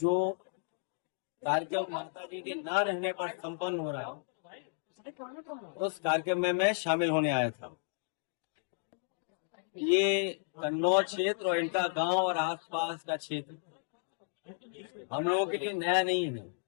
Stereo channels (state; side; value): silent; right; digital silence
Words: कार्यक्रम माता जी के ना रहने पर संपन्न हो रहा है, उस कार्यक्रम में मैं शामिल होने आया था। ये कन्नौज क्षेत्र और इनका गांव और आसपास का क्षेत्र हम लोगों के लिए नया नहीं है।